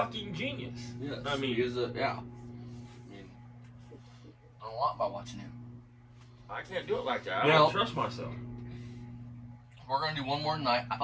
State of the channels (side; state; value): both; identical; correlation 1.00